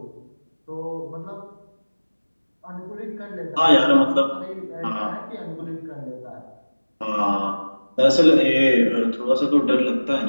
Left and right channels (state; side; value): inverted; both; correlation -1.00